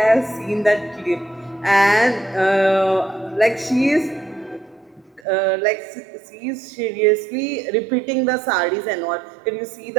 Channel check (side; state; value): left; drops out; at 5.2 s